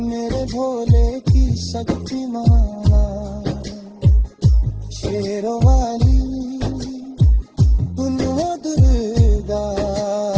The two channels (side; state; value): both; identical; correlation 1.00